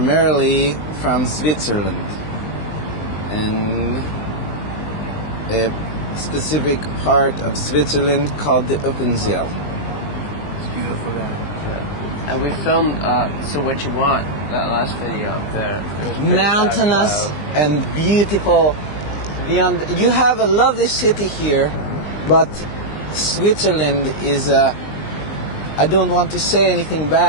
from Switzerland, and a specific part of Switzerland called the Uppenzell. It's beautiful there. And we filmed So What You Want, that last video. Mountainous and beautiful. Beyond, you have a lovely city here, but Switzerland is I don't want to say anything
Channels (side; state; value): right; late; 20 ms